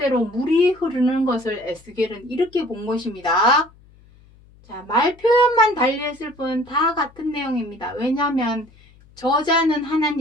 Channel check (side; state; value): left; noise; hum, 27 dB below the sound